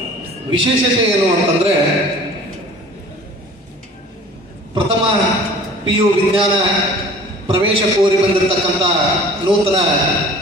ವಿಶೇಷತೆ ಏನು ಅಂತಂದರೆ, ಪ್ರಥಮ PU ವಿಜ್ಞಾನ ಪ್ರವೇಶ ಕೋರಿ ಬಂದಿರತಕ್ಕಂಥ ನೂತನ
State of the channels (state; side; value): normal; both; correlation 0.46